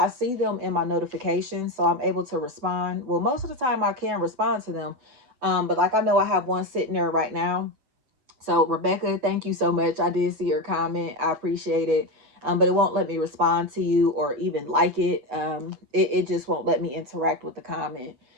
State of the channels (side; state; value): left; late; 8.0 ms